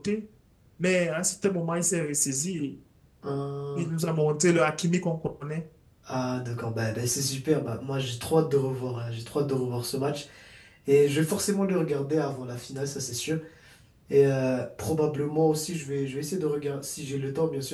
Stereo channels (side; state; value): both; identical; correlation 1.00